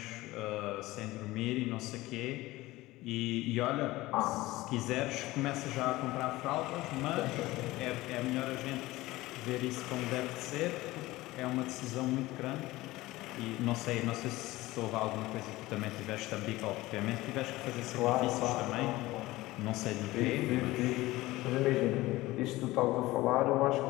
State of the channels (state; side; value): quieter; right; 18.6 dB